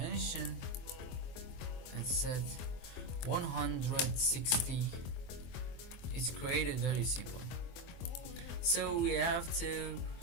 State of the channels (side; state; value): right; late; 24 ms